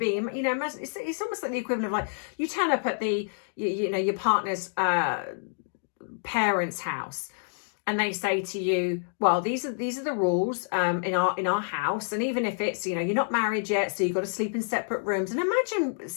You know, it's almost like the equivalent of like you turn up at the you know your partner's parents' house, and they say to you, well, these are the rules in our house, and even if it's, you know, you're not married yet, so you've got to sleep in separate rooms. And imagine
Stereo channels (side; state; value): right; silent; digital silence